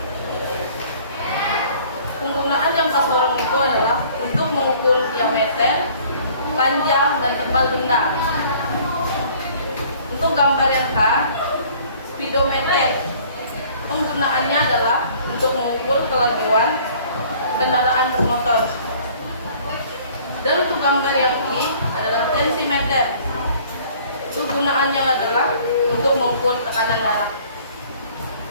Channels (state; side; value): inverted; both; correlation -0.54